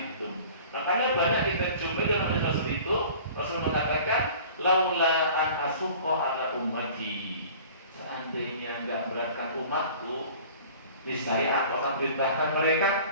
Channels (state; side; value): inverted; both; correlation -0.45